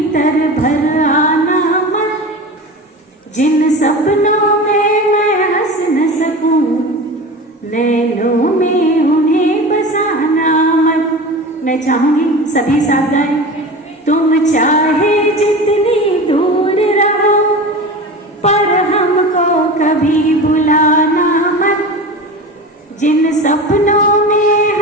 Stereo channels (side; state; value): both; normal; correlation 0.31